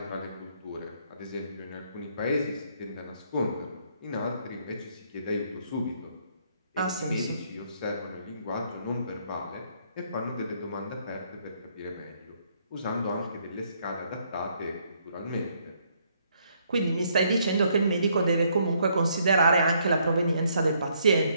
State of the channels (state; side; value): inverted; both; correlation -0.70